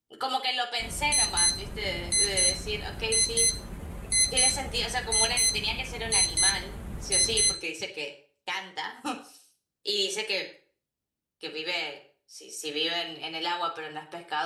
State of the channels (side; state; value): both; identical; correlation 1.00